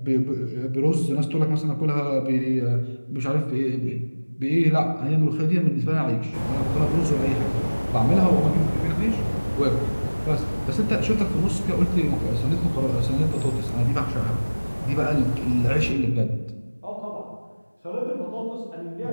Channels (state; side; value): inverted; both; correlation -1.00